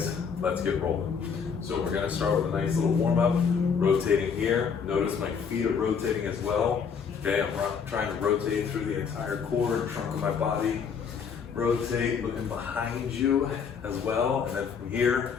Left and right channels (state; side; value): quieter; right; 6.4 dB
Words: let's get rolling. So we're gonna start with a nice little warm up, rotating here. Notice my feet are rotating as well. Okay, I'm trying to rotate through the entire core, trunk of my body. Rotate, looking behind you as well. And then from here,